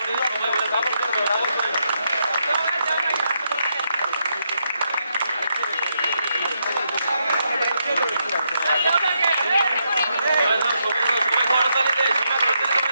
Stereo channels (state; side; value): inverted; both; correlation -0.80